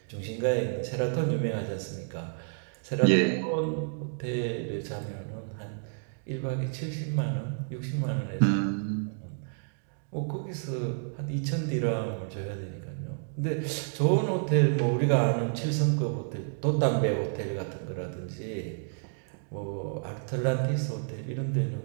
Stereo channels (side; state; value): left; silent; digital silence